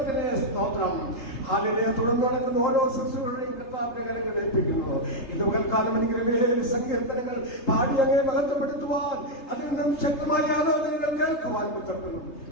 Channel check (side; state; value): right; late; 3.8 ms